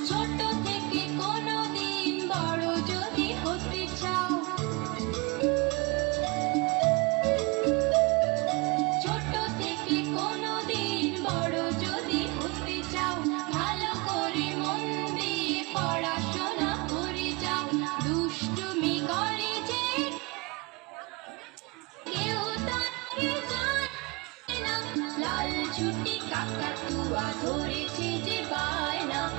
ছোট থেকে কোনোদিন বড় যদি হতে চাও, ছোট থেকে কোনোদিন বড় যদি হতে চাও, ভালো করে মন দিয়ে পড়াশোনা করে যাও। দুষ্টুমি করে যে কেউ তাকে জানে না, লাল ছুটি কাকাতুয়া ধরেছে যে বায়না,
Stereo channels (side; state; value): left; quieter; 27.2 dB